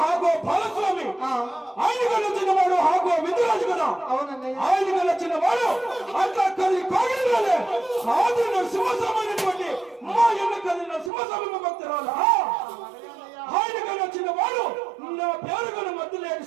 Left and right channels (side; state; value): left; drops out; at 11.1 s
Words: హాగో బాలస్వామి ఆయనకు నచ్చిన వాడు హాగో విందురాజు కదా అవునన్నయ్య ఆయనకు నచ్చిన వాడు అట్లా కలి కాగినాలే సాధు నరసింహస్వామైనటువంటి మా ఎన్న కలిగిన సింహస్వామి భక్తురాలా ఆయనకు నచ్చిన వాడు నా పేరుగల మధ్య లేని